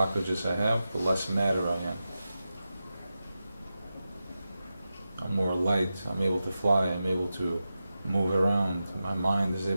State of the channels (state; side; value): inverted; both; correlation -0.92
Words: I have, the less matter I am. I'm more light, I'm able to fly, I'm able to move around, my mind is